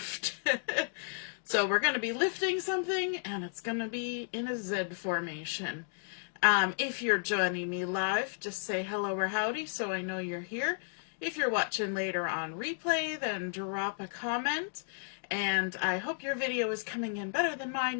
So we're going to be lifting something, and it's going to be in a Z formation. If you're joining me live, just say hello or howdy so I know you're here. If you're watching later on replay, then drop a comment. And I hope your video is coming in better than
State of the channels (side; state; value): right; silent; digital silence